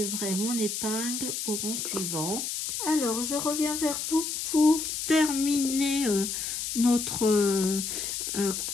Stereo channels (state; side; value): noise; left; hiss, 3 dB below the sound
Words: mon épingle au rang suivant. Alors, je reviens vers vous pour terminer notre